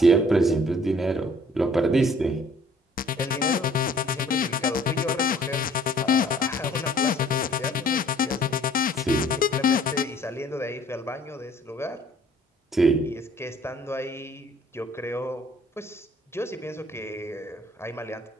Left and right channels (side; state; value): both; normal; correlation 0.56